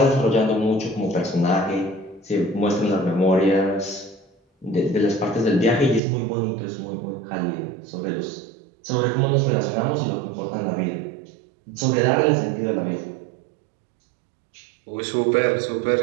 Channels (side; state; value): left; drops out; at 6.0 s